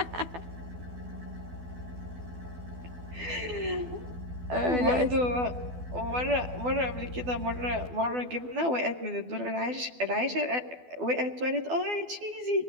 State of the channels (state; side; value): late; left; 12 ms